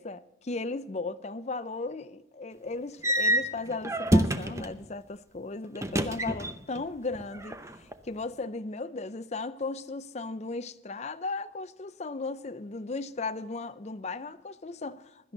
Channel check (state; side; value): normal; both; correlation 0.34